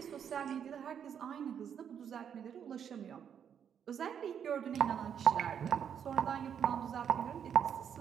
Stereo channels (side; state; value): left; quieter; 8.2 dB